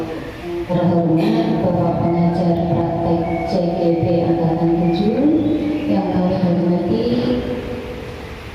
Terhormat Bapak Pengajar Praktek CGP Angkatan 7 yang kami hormati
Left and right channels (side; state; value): both; identical; correlation 1.00